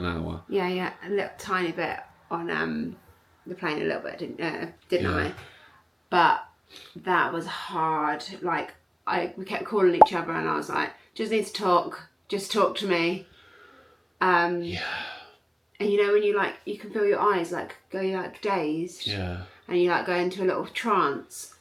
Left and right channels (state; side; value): identical; both; correlation 1.00